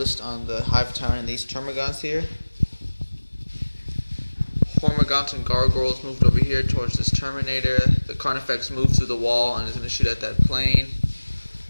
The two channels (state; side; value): inverted; both; correlation -1.00